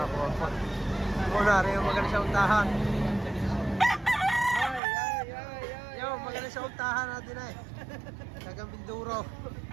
Muna rin yung magaling sa untahan. Yo, magaling sa untahan natin ay. Tagang Binduro.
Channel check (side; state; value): left; drops out; at 4.8 s